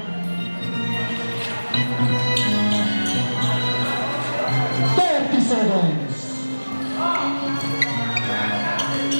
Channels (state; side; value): inverted; both; correlation -1.00